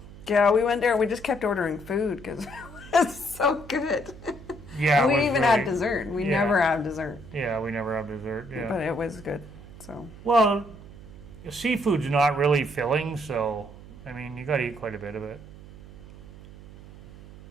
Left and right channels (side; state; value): right; noise; hum, 17 dB below the sound